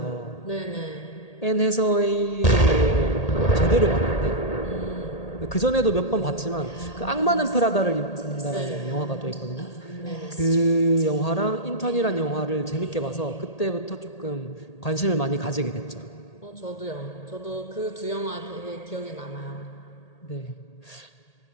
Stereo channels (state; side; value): late; right; 1.8 ms